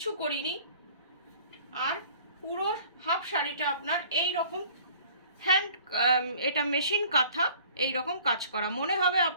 করিনি। আর পুরো হাফ শাড়িটা আপনার এই রকম হ্যান্ড, এটা মেশিন কাঁথা, এই রকম কাজ করা, মনে হবে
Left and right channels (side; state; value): both; inverted; correlation -0.51